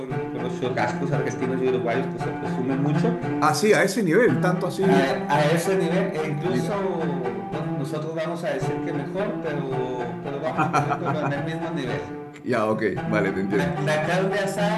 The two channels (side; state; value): both; identical; correlation 1.00